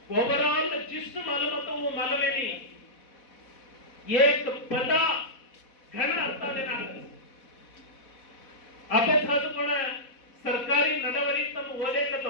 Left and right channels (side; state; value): right; late; 4.1 ms